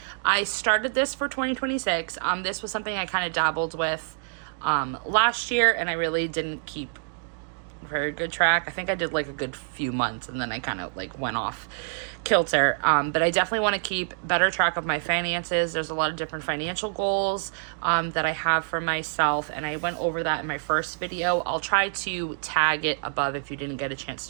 I started this for 2026. This was something I kind of dabbled with last year, and I really didn't keep very good track. I think I did like a good few months and then I kind of like went off kilter. But I definitely want to keep better track of my finances. There's a lot of different financial goals that I have for myself, and I went over that in my first video. I'll try to tag it above if you didn't get a chance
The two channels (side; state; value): left; silent; digital silence